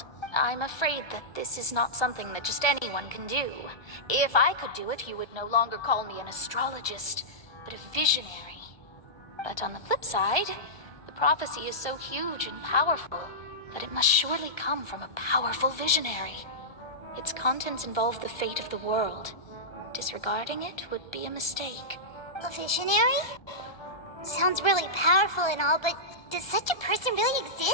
I'm afraid that this is not something that just anyone can do. If I could do it, you would no longer call me an astrologist, but a visionary. But on the flip side, the prophecy is so huge and powerful that it must surely come from a powerful visionary. Its contents involve the fate of the world. Disregarding it would be a mistake. A visionary? Sounds really powerful and all, but does such a person really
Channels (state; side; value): late; right; 1.1 ms